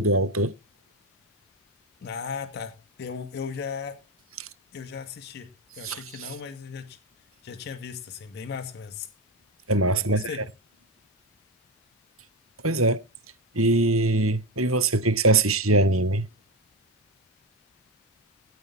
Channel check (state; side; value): normal; both; correlation 0.15